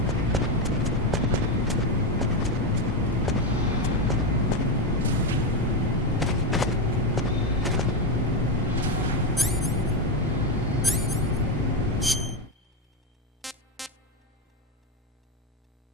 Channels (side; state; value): both; normal; correlation 0.10